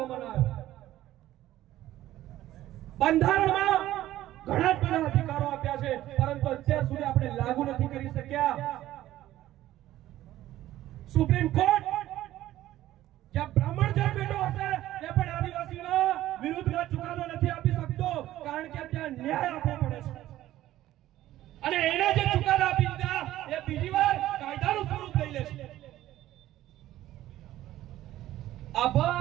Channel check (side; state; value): left; quieter; 14.2 dB